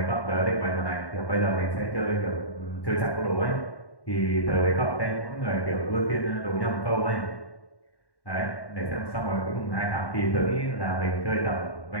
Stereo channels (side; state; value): right; late; 1.1 ms